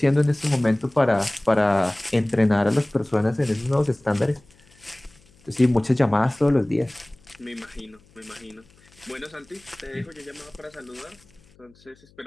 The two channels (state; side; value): noise; left; hum, 29 dB below the sound